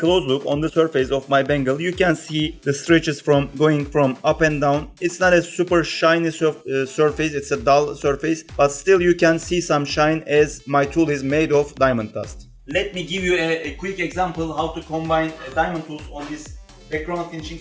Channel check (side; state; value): both; identical; correlation 1.00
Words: look on the surface of my bangle. You can see the stretches from going from up and down. It's not a super shiny surface, it's a dull surface, but still you can see some shine as my tool is made of diamond dust. Let me give you a quick example how to combine diamond tools on this background finishing